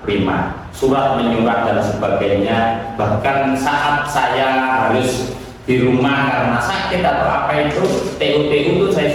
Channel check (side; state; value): both; identical; correlation 1.00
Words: surat menyurat dan sebagainya. Bahkan saat saya harus di rumah karena sakit atau apa itu, TU itu saya